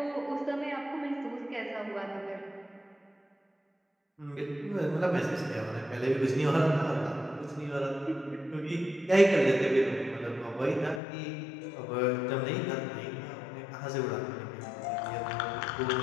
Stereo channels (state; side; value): drops out; right; at 11.0 s